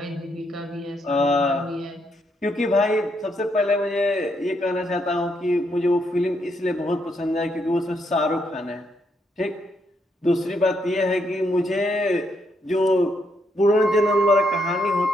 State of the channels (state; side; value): normal; both; correlation 0.76